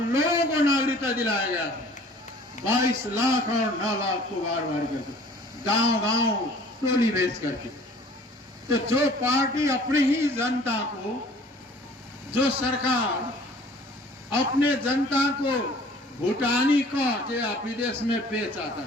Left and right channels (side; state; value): both; normal; correlation 0.51